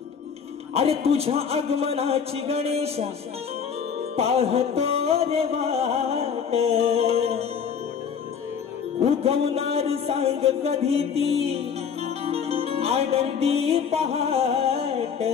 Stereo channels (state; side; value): quieter; right; 7.0 dB